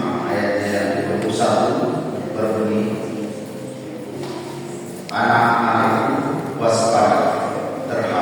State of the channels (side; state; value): both; identical; correlation 1.00